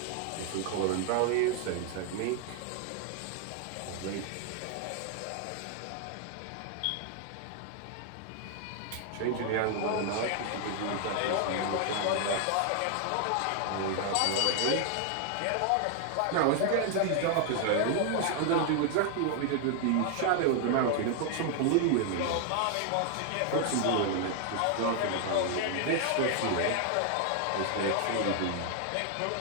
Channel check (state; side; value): different; both; correlation 0.00